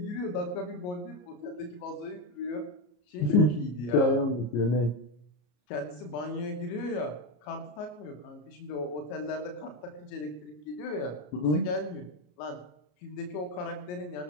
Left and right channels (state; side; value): late; right; 34 ms